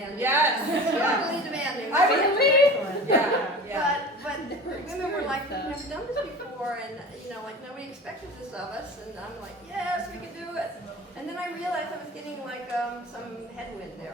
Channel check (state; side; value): normal; both; correlation 0.37